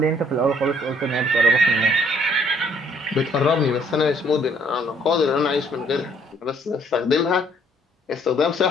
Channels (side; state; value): both; normal; correlation 0.63